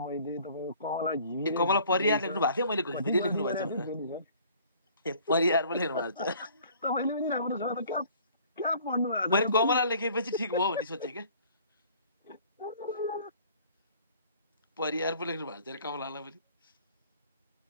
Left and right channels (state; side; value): inverted; both; correlation -0.54